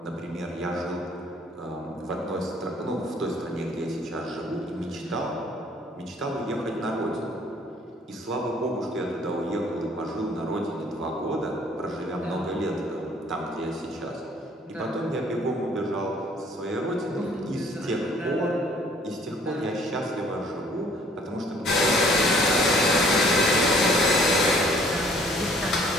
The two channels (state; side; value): normal; both; correlation 0.58